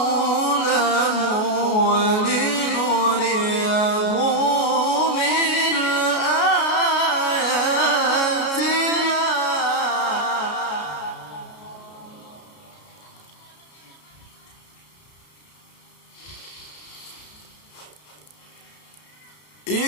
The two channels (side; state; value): right; late; 33 ms